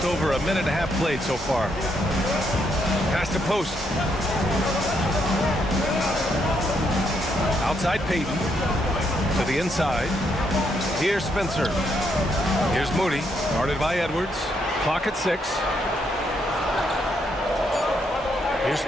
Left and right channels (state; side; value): normal; both; correlation 0.76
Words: over a minute and a half played so far. Pass to post. Outside Payton. To the inside. Here's Spencer. Here's Moody. Guarded by Edwards. Clock at 6. Here's